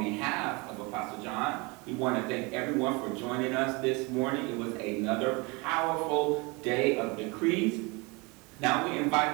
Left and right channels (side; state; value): left; quieter; 27.3 dB